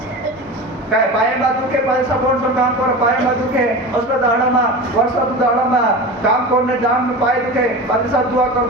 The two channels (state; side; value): normal; both; correlation 0.30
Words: काय पाए में दुखे, पादरी साहब कौन सा काम करो, पाए में दुखे, उसका दाड़ा में वर्षा तो दाड़ा में काम करने जाम में पाए दुखे, पादरी साहब दुआ